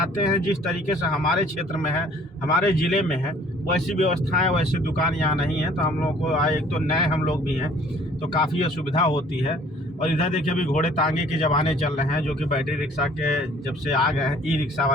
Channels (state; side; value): normal; both; correlation 0.55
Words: हैं, जिस तरीके से हमारे क्षेत्र में है, हमारे ज़िले में है, वैसी व्यवस्थाएं, वैसी दुकान यहाँ नहीं है। तो हम लोगों को एक तो नए हम लोग भी हैं, तो काफ़ी असुविधा होती है। और इधर देखिए अभी घोड़े तांगे के ज़माने चल रहे हैं, जो कि बैटरी रिक्शा के जब से आ गए हैं, ई रिक्शा